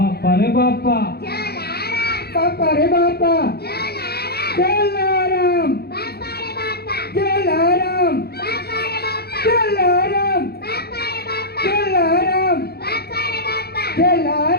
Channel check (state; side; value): late; right; 0.46 ms